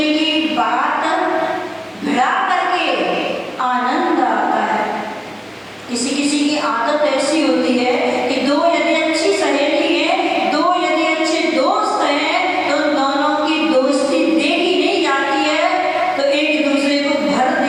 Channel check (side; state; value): both; identical; correlation 1.00